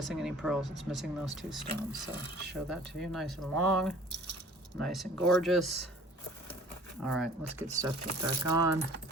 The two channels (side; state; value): both; normal; correlation 0.50